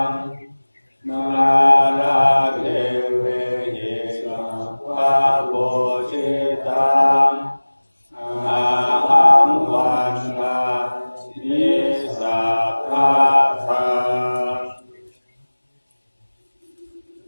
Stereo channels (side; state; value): both; inverted; correlation -1.00